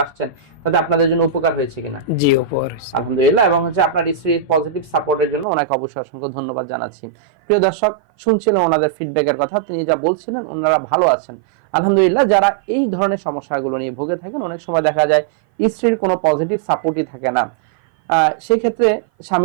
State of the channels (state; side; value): drops out; left; at 5.5 s